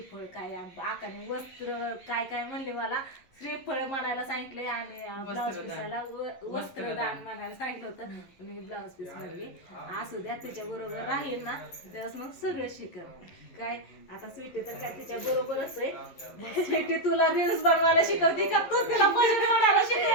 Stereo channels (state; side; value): late; right; 11 ms